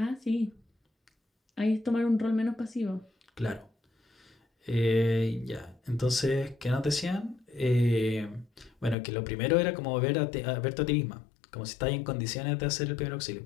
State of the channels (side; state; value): right; drops out; at 9.0 s